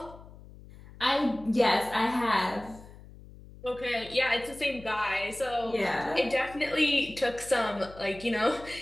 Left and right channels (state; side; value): noise; left; hum, 19 dB below the sound